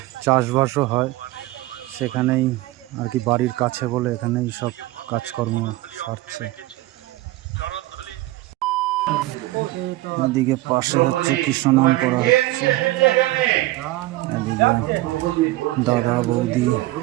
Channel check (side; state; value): left; quieter; 18.3 dB